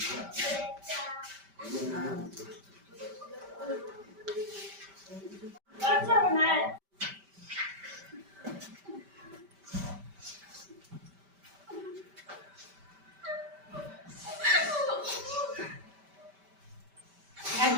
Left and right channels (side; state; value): left; late; 5.1 ms